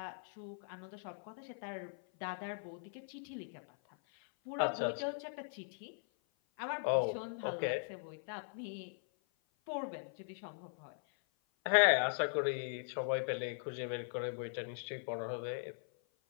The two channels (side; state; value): right; silent; 51 dB below the other